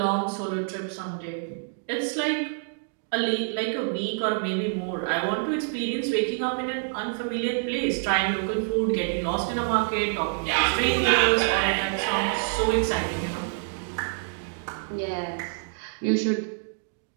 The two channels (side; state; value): left; silent; digital silence